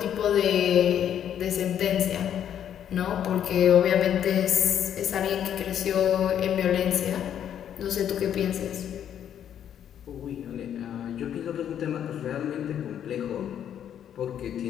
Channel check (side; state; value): right; quieter; 9.6 dB